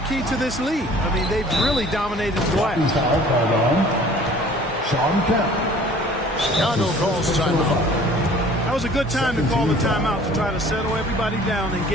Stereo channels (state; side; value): normal; both; correlation 0.50